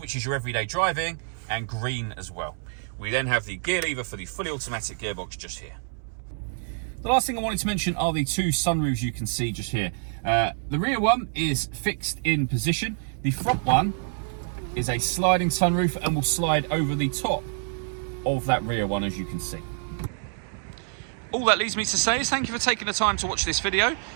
is your everyday driving, and green as well. We then have the gear lever for the fully automatic gearbox just here. The last thing I wanted to mention are the 2 sunroofs you can see just here. The rear one is fixed in position. The front one is a sliding sunroof and will slide over the top of that rear one, as you can see. All that leaves me to say is thank you for taking the time to watch this video.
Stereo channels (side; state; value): left; silent; 60 dB below the other